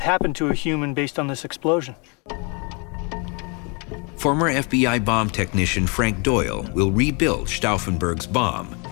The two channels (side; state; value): right; quieter; 32.4 dB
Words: happen to a human based on this explosion. Former FBI bomb technician Frank Doyle will rebuild Stauffenberg's bomb